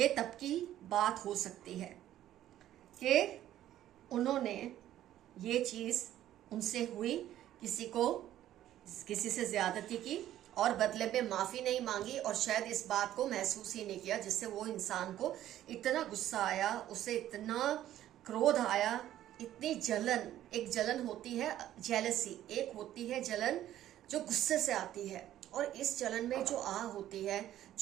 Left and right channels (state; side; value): quieter; left; 12.6 dB